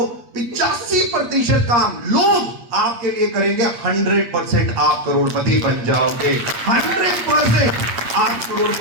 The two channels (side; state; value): left; late; 8.3 ms